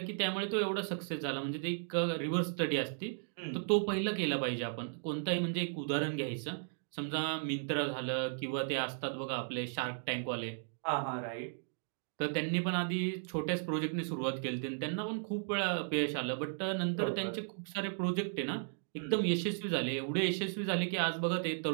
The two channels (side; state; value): left; silent; digital silence